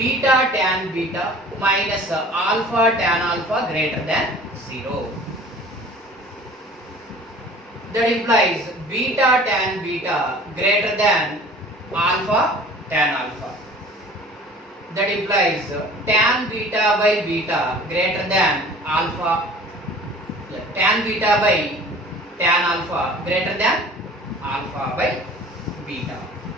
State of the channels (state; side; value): normal; both; correlation 0.46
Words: tan beta minus alpha tan alpha greater than 0. That implies beta tan beta greater than alpha tan alpha. That implies tan beta by beta greater than alpha, tan beta by tan alpha greater than alpha by beta.